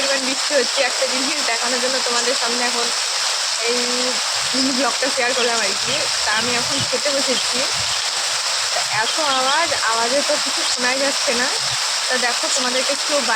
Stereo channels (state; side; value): identical; both; correlation 1.00